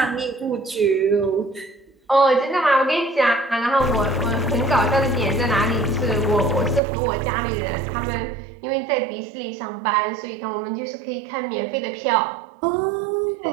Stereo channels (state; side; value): drops out; left; at 6.8 s